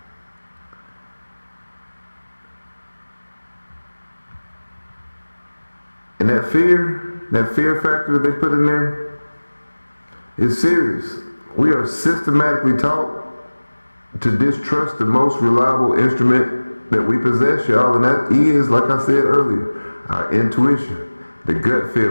And that fear factor that they put in there is serious. We are systematically taught to distrust the most reliable instrument that we possess, y'all, and that is, like I said earlier, our intuition, the gut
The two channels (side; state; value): both; inverted; correlation -1.00